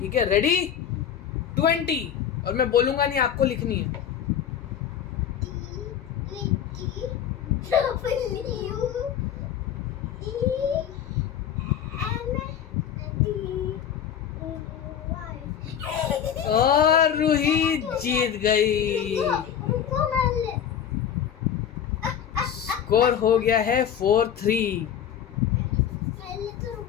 है? रेडी? 20, और मैं बोलूंगा नहीं, आपको लिखनी है। और रूही जीत गई। स्कोर हो गया है 4-3।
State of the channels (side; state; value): right; quieter; 9.1 dB